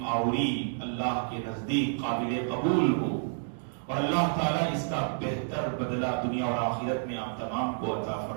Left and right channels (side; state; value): left; silent; digital silence